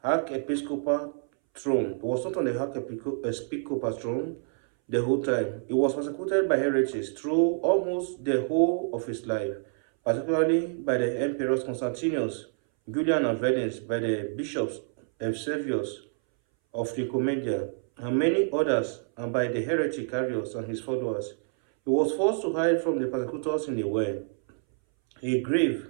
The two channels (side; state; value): left; silent; 60 dB below the other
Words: archiepiscopal throne. He was not on the archiepiscopal throne the whole time. He was persecuted by heretics through almost the whole of his life, particularly by the emperors Constantius, Julian and Valens, by the bishops Eusebius of Nicomedia, and many others, and by the heretic Arius and his followers. He was forced to hide from the persecutors in a well, a grave,